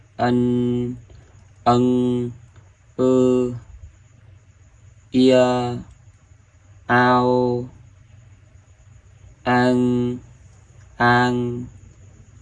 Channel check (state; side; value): identical; both; correlation 1.00